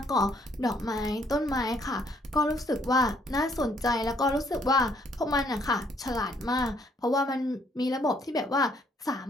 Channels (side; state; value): both; normal; correlation 0.67